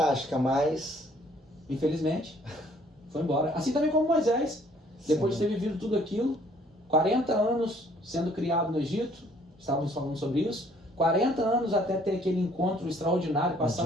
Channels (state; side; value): normal; both; correlation 0.61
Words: mas... Infelizmente, foi embora. Assim também como Moisés, depois de ter vivido tudo aquilo, 40 anos sendo criado no Egito, estávamos falando sobre isso, 40 anos até ter aquele encontro extraordinário com a